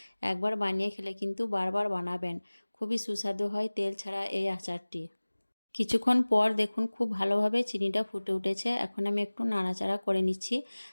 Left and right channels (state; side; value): inverted; both; correlation -1.00